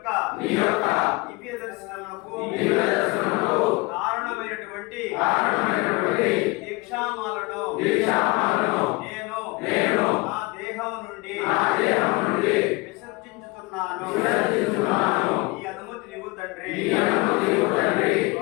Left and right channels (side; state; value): right; quieter; 24.5 dB